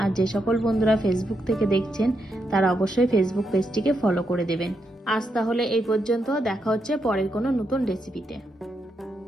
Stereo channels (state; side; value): normal; both; correlation 0.82